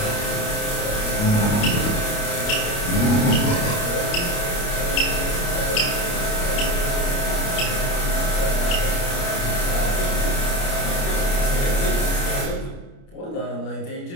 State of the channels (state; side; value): late; right; 29 ms